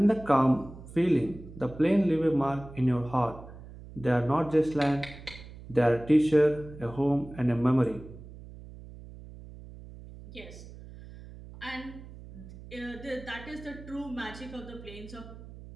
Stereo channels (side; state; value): right; noise; hum, 16 dB below the sound